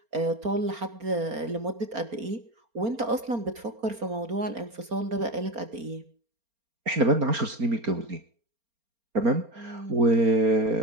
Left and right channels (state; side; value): late; left; 4.3 ms